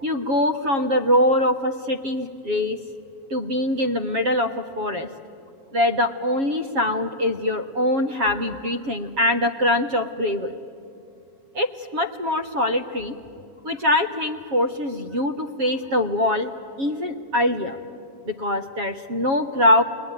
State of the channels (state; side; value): late; left; 7.3 ms